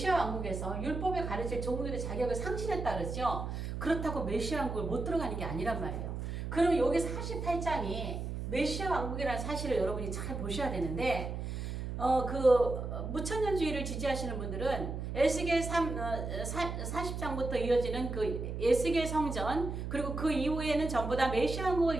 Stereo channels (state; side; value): noise; right; hum, 5 dB below the sound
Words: 왕국에서 율법에 가르칠 종들의 자격을 상실했다 그러죠. 그렇다고 메시아 왕국을 못 들어가는 게 아니란 말이에요. 그럼 여기 48장이 메시아 왕국이라는 사실을 여러분이 잘 보셔야 되는데 무천년주의를 지지하시는 분들은 에스겔 40장부터 이어지는 그 에스겔 성전 그리고 그 이후에는 전부 다 메시아